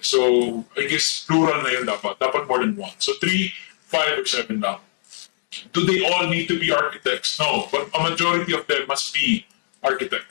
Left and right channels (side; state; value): right; silent; digital silence